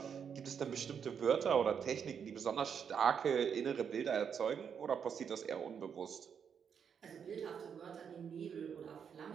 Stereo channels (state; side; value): quieter; left; 7.3 dB